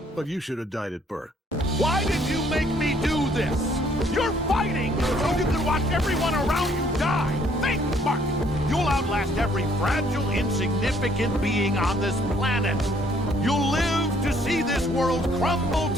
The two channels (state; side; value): normal; both; correlation 0.64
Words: But you should have died at birth. Why did you make me do this? You're fighting so you can watch everyone around you die. Think, Mark. You'll outlast every fragile, insignificant being on this planet. You'll live to see this world crumble